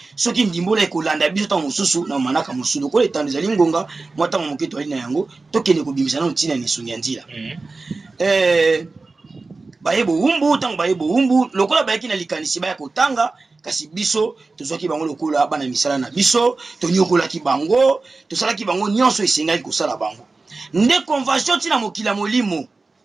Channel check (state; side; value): quieter; left; 3.7 dB